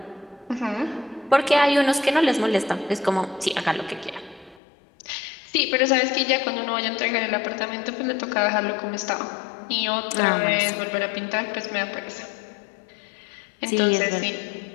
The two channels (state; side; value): drops out; right; at 4.6 s